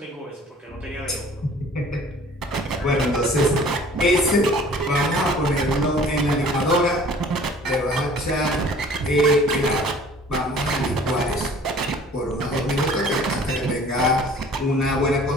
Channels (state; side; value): normal; both; correlation 0.50